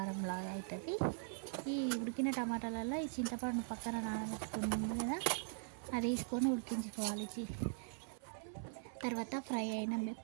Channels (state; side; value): silent; left; 50 dB below the other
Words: అవుతుంది. ఈ ఉడికిన టమాటాలలో ఈ చింతపండు పక్కన నానబెట్టుకుంది కదా, అది వేసుకొని ఉడికించుకోవాలి. తర్వాత ఫ్రై అయిన